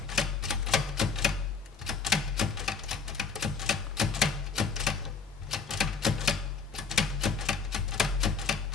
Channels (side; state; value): right; quieter; 5.3 dB